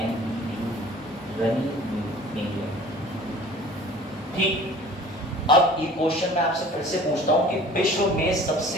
रनी मीड। ठीक, अब ये क्वेश्चन मैं आपसे फिर से पूछता हूं कि विश्व में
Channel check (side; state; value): both; normal; correlation 0.46